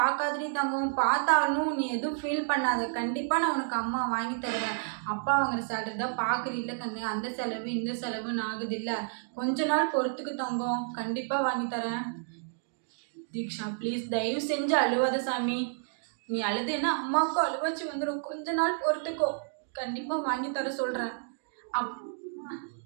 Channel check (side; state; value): left; silent; digital silence